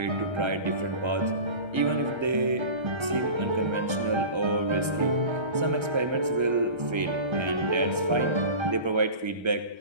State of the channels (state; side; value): late; left; 1.3 ms